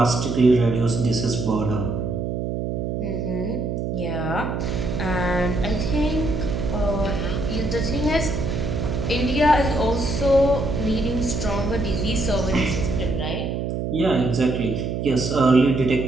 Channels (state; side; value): noise; right; hum, 2 dB below the sound